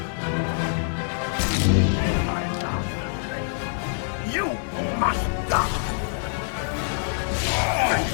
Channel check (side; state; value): right; silent; 62 dB below the other